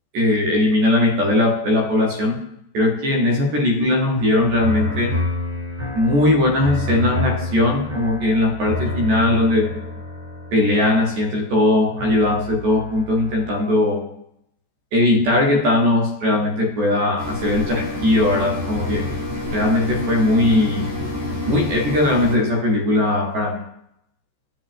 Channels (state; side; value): late; left; 14 ms